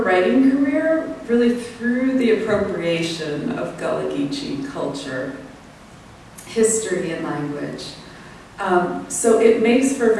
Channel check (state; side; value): identical; both; correlation 1.00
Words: career really through the appropriation of Gullah Geechee culture, history, and language. So it makes for